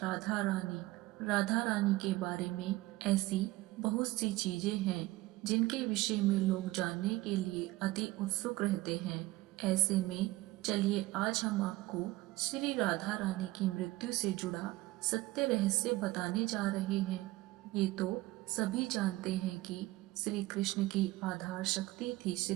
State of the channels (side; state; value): left; quieter; 18.8 dB